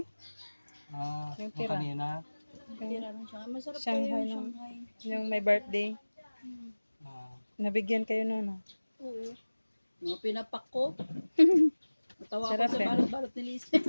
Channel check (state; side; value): inverted; both; correlation -1.00